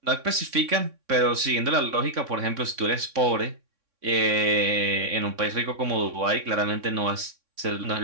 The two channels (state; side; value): late; left; 3.6 ms